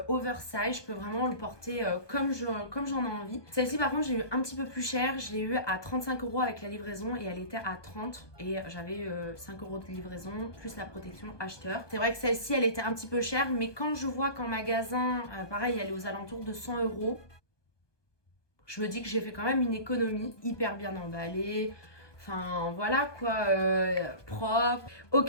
oversize, je peux vraiment le porter comme j'en ai envie. Celle-ci par contre, j'ai eu un petit peu plus cher, je l'ai eu à 35 € avec la livraison et elle était à 30 et j'avais 5 € de livraison plus la protection acheteur. C'est vrai que celle-ci, elle était un petit peu chère, mais quand je vois qu'en magasin, pareil, elle est aux alentours de 100 €, je me dis que j'ai fait quand même une économie, hyper bien emballée. Enfin voilà quoi, propre,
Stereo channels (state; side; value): late; right; 1.2 ms